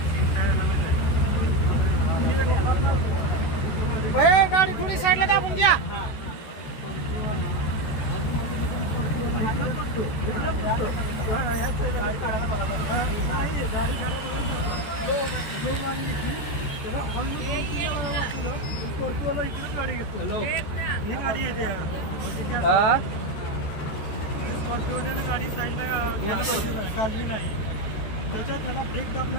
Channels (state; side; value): late; right; 14 ms